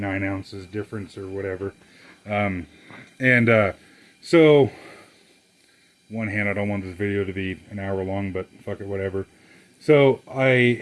ounces difference or whatever. So one hand, I don't want this video to be an hour long, but fuck it, whatever. So I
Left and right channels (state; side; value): identical; both; correlation 1.00